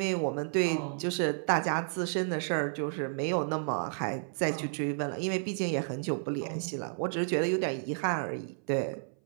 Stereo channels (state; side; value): silent; left; 57 dB below the other